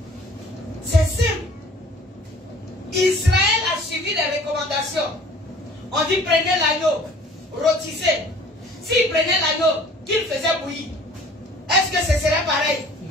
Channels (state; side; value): normal; both; correlation 0.51